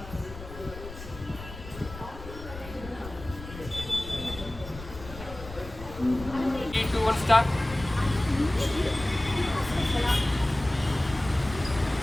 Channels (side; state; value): left; noise; rumble, 13 dB below the sound